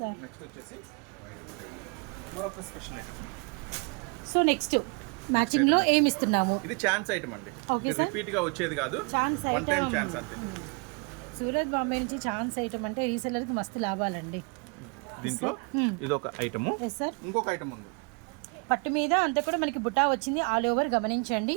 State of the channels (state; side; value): quieter; left; 34.5 dB